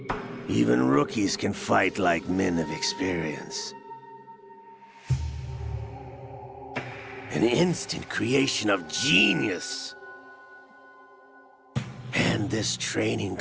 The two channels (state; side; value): identical; both; correlation 1.00